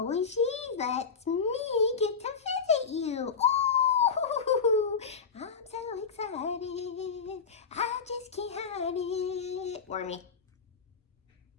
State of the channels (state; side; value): quieter; right; 5.7 dB